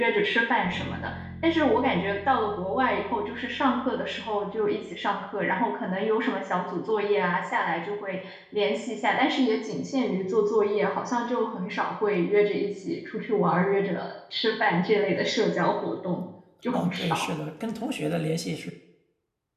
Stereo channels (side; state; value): both; identical; correlation 1.00